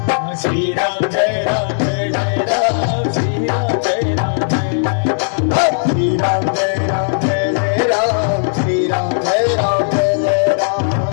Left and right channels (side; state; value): right; silent; digital silence